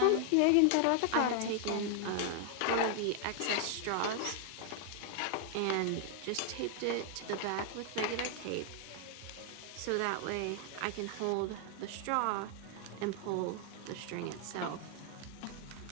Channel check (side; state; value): both; different; correlation 0.00